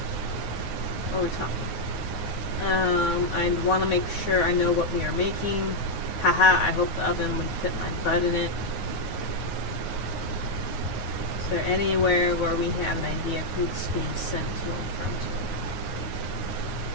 What are we talking? I'd want to make sure I know what we are making. Haha, I hope the oven would fit my butt in it. Is there anywhere where we have an idea of who's being sent to and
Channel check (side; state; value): right; late; 9.6 ms